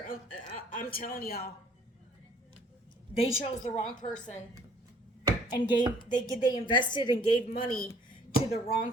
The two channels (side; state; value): both; normal; correlation 0.57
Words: I'm telling y'all. They chose the wrong person. And they invested and gave money to the wrong